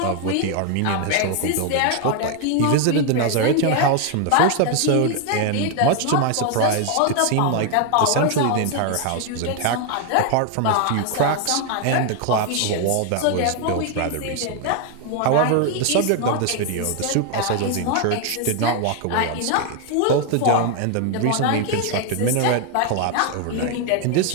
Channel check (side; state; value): both; different; correlation 0.01